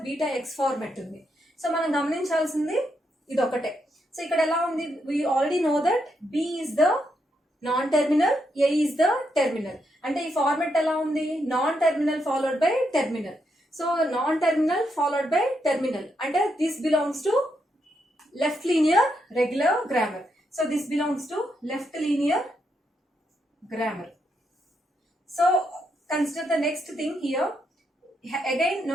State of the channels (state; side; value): normal; both; correlation 0.80